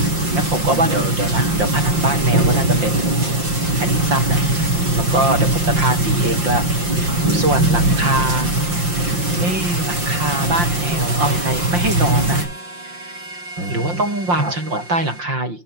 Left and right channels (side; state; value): left; late; 5.7 ms